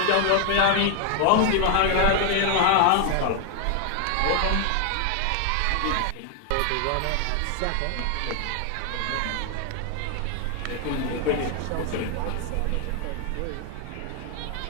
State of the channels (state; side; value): different; both; correlation 0.00